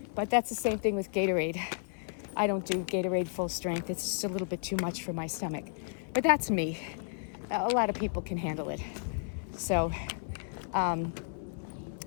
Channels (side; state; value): right; silent; 56 dB below the other